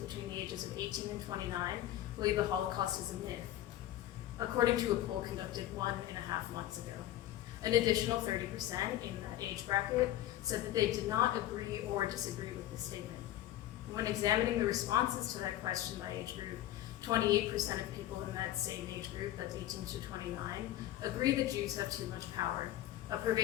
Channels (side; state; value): right; quieter; 13.5 dB